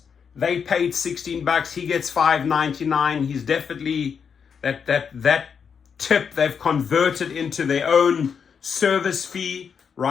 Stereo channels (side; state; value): right; quieter; 6.7 dB